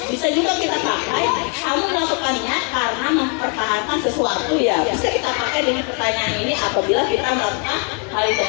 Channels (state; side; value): quieter; right; 38.5 dB